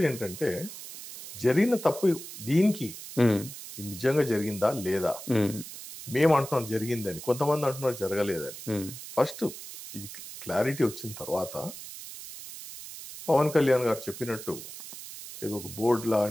ఏంటంటే జరిగిన తప్పు దీనికి నిజంగా జరిగిందా లేదా, మేము అంటున్నాం జరిగిందని, కొంతమంది అంటున్నారు జరగలేదని. ఫస్ట్ ఇది క్లారిటీ వచ్చిన తర్వాత పవన్ కళ్యాణ్ గారు చెప్పినట్టు ఏదో ఒక బోర్డు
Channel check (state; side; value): noise; right; hiss, 12 dB below the sound